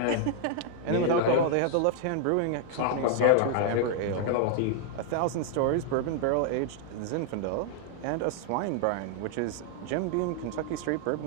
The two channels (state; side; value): different; both; correlation 0.00